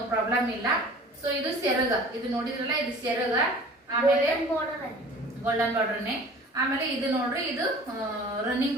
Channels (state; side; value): normal; both; correlation 0.46